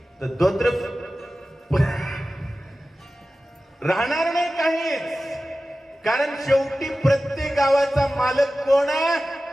तर दोत्र राहणार नाही काहीच. कारण शेवटी प्रत्येक गावाचा मालक कोण आहे?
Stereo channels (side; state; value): both; normal; correlation 0.95